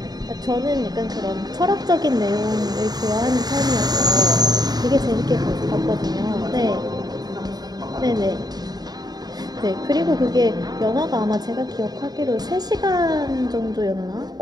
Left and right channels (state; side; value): late; left; 0.19 ms